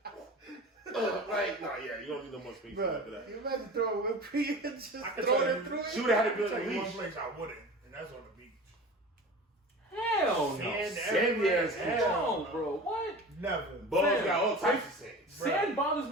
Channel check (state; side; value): normal; both; correlation 0.35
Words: you don't need no more space after that. You imagine throwing whipped cream and just Throw it through. She would have had a Tell good you one leash. place I wouldn't, and that's on the beach. Hell no. Sandy ass Hell, bro. What? Never. Balls got all types of sand. Sand bothers